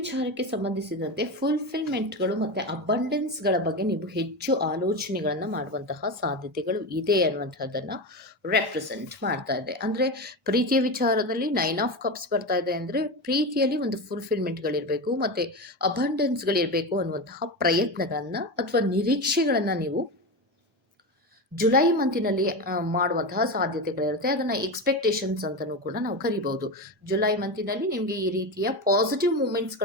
ಸಂಬಂಧಿಸಿದಂತೆ ಫುಲ್ಫಿಲ್ಮೆಂಟ್ಗಳು ಮತ್ತು ಅಬಂಡೆನ್ಸ್ಗಳ ಬಗ್ಗೆ ನೀವು ಹೆಚ್ಚು ಆಲೋಚನೆಗಳನ್ನು ಮಾಡುವಂತಹ ಸಾಧ್ಯತೆಗಳು ಇದೆ ಅನ್ನುವಂಥದ್ದನ್ನು ರೆಪ್ರೆಸೆಂಟ್ ಮಾಡ್ತಾ ಇದೆ. ಅಂದರೆ ಪ್ರೀತಿಯ ವಿಚಾರದಲ್ಲಿ 9 ಆಫ್ ಕಪ್ಸ್ ಬರ್ತಾ ಇದೆ ಅಂದರೆ ಪ್ರೀತಿಯಲ್ಲಿ ಒಂದು ಫುಲ್ಫಿಲ್ಮೆಂಟ್ಗಳಿರಬೇಕು ಮತ್ತು ಅಬಂಡೆನ್ಸ್ಗಳಿರಬೇಕು ಅನ್ನುವಂತಹ ಪ್ರಯತ್ನಗಳನ್ನು ಅಥವಾ ನಿರೀಕ್ಷೆಗಳನ್ನು ನೀವು ಜುಲೈ ಮಂತಿನಲ್ಲಿ ಮಾಡುವಂತಹ ಸಾಧ್ಯತೆಗಳಿರುತ್ತೆ. ಅದನ್ನು ಎಕ್ಸ್ಪೆಕ್ಟೇಷನ್ಸ್ ಅಂತಲೂ ಕೂಡ ನಾವು ಕರಿಬಹುದು. ಜುಲೈ ಮಂತಿನಲ್ಲಿ ನಿಮಗೆ ಈ ರೀತಿಯ ಪಾಸಿಟಿವ್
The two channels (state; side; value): normal; both; correlation 0.19